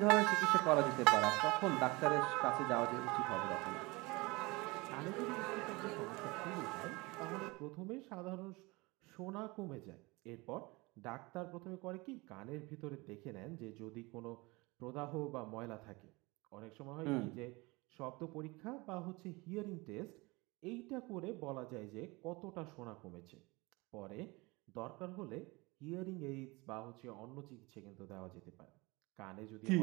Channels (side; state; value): left; quieter; 24.4 dB